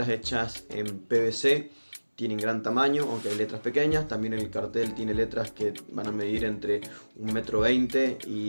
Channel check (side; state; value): both; inverted; correlation -1.00